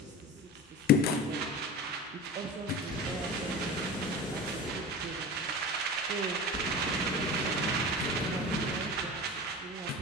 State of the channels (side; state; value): both; normal; correlation 0.30